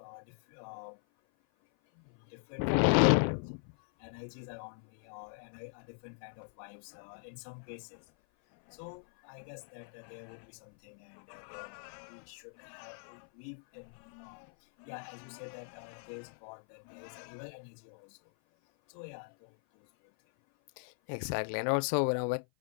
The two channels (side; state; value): right; silent; 52 dB below the other